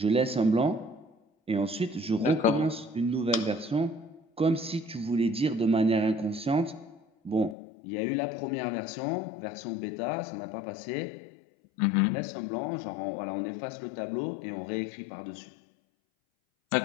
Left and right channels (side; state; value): right; drops out; at 7.6 s